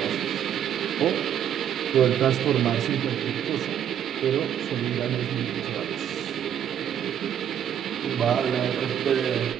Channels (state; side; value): quieter; left; 9.6 dB